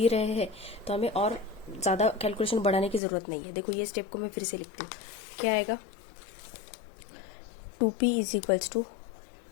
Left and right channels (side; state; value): right; drops out; at 3.0 s